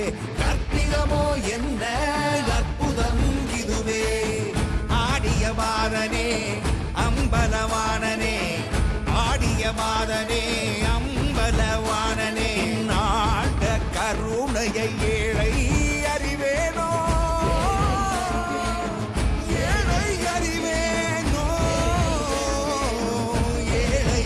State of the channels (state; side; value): identical; both; correlation 1.00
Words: கற்பிதமோ என்ன அற்புதம் இதுவே ஆடிய மாதனே அம்பலவானனே ஆடிய மாதனே அம்பலவானனே நாட கருணையை ஏழை அறிவேனோ ஏழை அறிவேனோ ஏழை